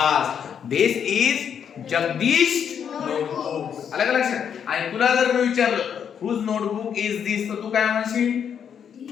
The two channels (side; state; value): right; quieter; 8.0 dB